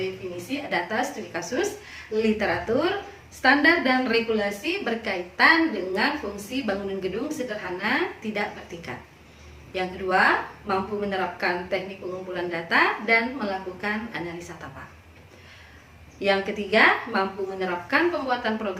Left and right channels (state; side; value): identical; both; correlation 1.00